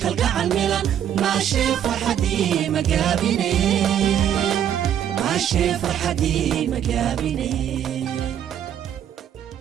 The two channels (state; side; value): quieter; left; 9.8 dB